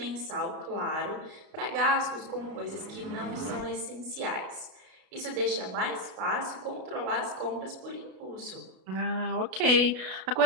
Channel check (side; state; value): left; late; 32 ms